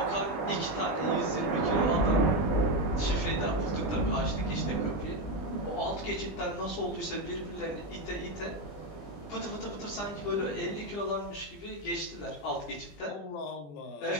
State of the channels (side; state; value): right; late; 20 ms